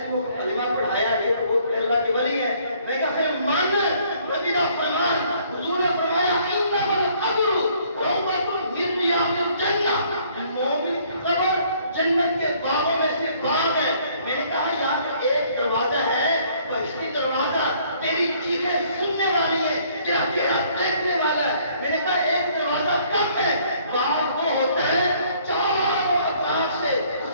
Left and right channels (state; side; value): inverted; both; correlation -0.62